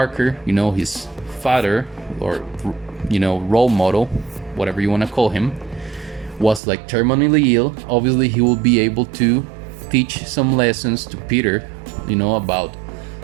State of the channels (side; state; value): left; drops out; at 6.6 s